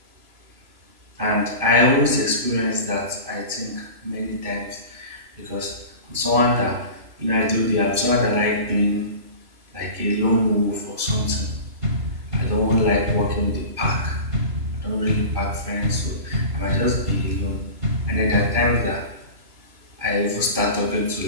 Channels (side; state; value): left; late; 3.0 ms